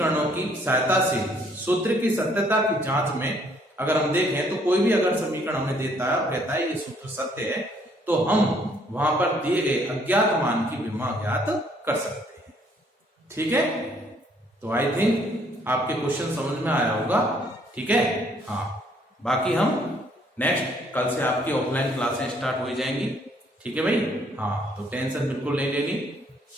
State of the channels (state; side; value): normal; both; correlation 0.65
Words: की सहायता से सूत्र की सत्यता की जांच में अगर हम देखें तो कोई भी अगर समीकरण हमें देता है और कहता है ये सूत्र सत्य है, तो हम वहां पर दिए गए अज्ञात मान की विमा ज्ञात कर सकते हैं। ठीक है, तो आई थिंक आपके क्वेश्चन समझ में आया होगा। ठीक है, हाँ, बाकी हम नेक्स्ट कल से आपकी ऑफलाइन क्लासें स्टार्ट हो जाएंगी। ठीक है भाई, हाँ, तो टेंशन बिल्कुल नहीं लेनी